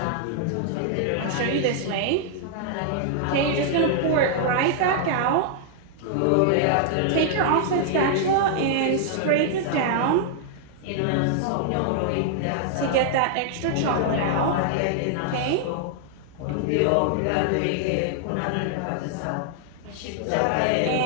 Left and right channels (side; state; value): both; different; correlation -0.01